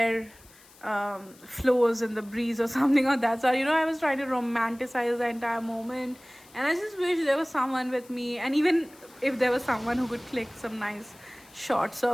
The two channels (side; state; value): left; noise; hiss, 25 dB below the sound